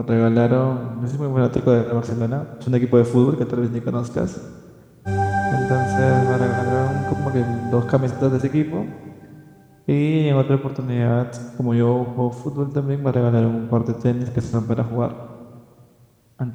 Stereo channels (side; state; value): both; identical; correlation 1.00